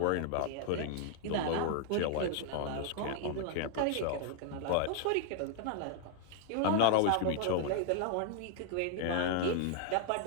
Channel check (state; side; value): different; both; correlation 0.00